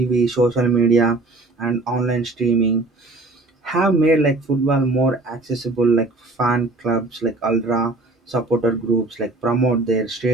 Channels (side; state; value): left; quieter; 3.1 dB